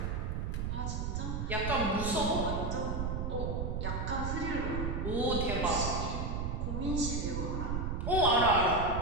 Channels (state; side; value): noise; right; rumble, 1 dB below the sound